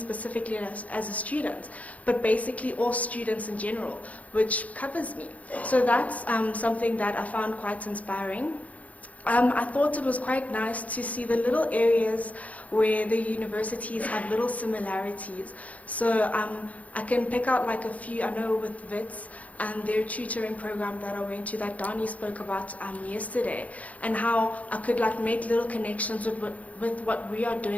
as a student, but basically all students in general, which covers me. So that's something that I found quite inspiring. I thought it was quite nice to see the little areas where the universities have little similarities. So I can pick out like a few. I know with WITS and their tutoring program that I went to that Dani spoke about yesterday, and how I could like make little connections with what we are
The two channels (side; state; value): right; late; 0.070 ms